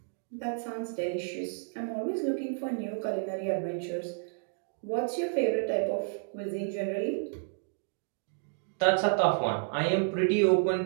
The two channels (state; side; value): silent; left; digital silence